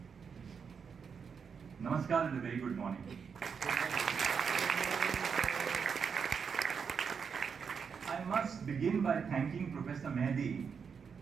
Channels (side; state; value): left; quieter; 6.3 dB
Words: Namaskar and a very good morning. I must begin by thanking Professor Mehdi